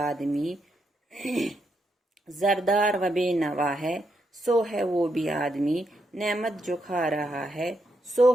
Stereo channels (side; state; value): both; normal; correlation 0.80